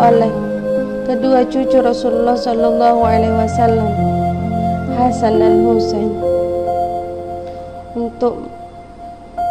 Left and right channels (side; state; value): both; identical; correlation 1.00